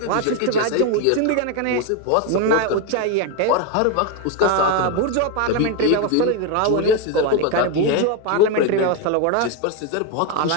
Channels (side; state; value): both; different; correlation 0.02